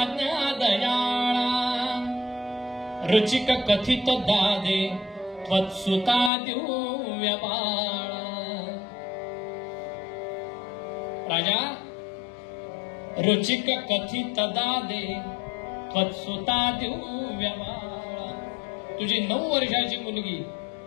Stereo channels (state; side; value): drops out; right; at 6.3 s